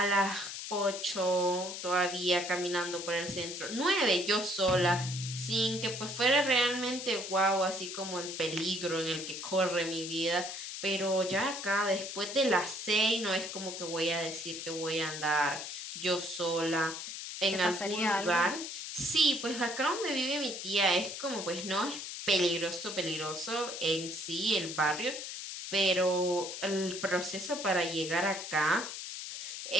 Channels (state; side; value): noise; left; hiss, 7 dB below the sound